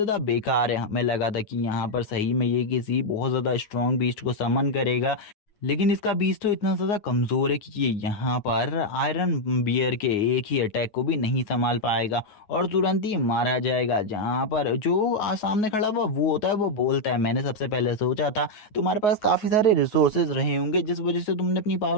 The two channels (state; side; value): late; right; 9.5 ms